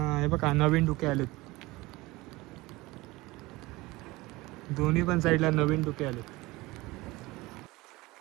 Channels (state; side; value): quieter; left; 21.0 dB